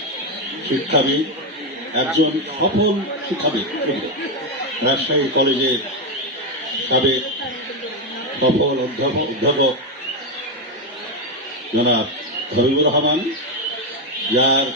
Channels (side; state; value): both; normal; correlation 0.07